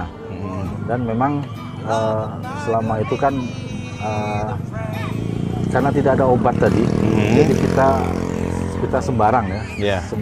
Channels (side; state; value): both; identical; correlation 1.00